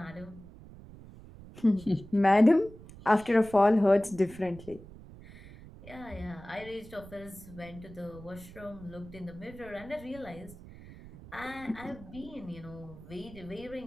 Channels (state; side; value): noise; right; rumble, 18 dB below the sound